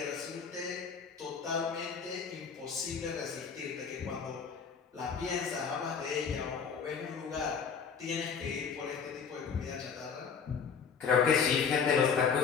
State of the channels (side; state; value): right; quieter; 6.3 dB